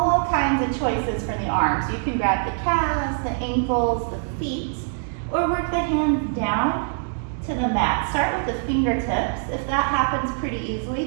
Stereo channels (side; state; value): left; silent; digital silence